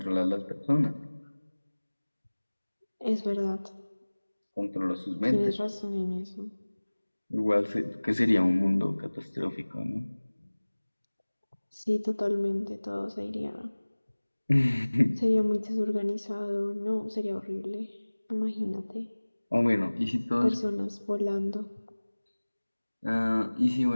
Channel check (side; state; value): both; inverted; correlation -1.00